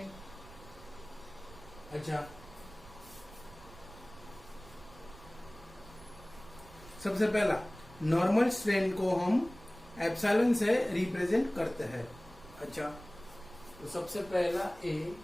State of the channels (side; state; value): right; noise; rumble, 19 dB below the sound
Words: अच्छा, सबसे पहला नॉर्मल स्ट्रेन को हम एप्सिलॉन से रिप्रेजेंट करते हैं। अच्छा, तो सबसे पहला ए